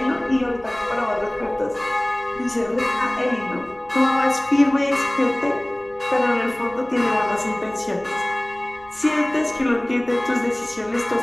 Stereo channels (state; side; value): noise; right; rumble, 26 dB below the sound